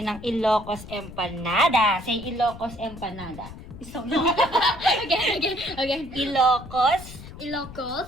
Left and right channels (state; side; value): noise; left; rumble, 15 dB below the sound